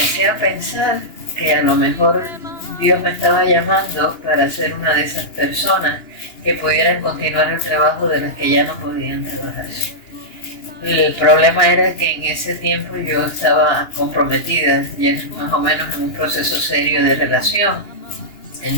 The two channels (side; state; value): right; late; 2.9 ms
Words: a pensar que a lo mejor Dios me estaba llamando para ser una de esas personas que pudieran continuar el trabajo de las que ya no podían trabajar. El problema era que en ese tiempo yo estaba comprometida, ya más o menos en un proceso serio de relación.